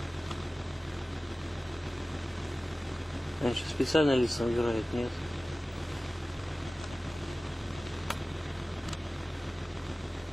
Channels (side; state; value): both; normal; correlation 0.97